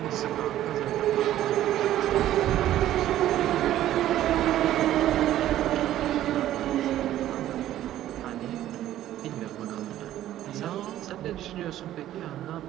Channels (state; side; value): quieter; left; 13.0 dB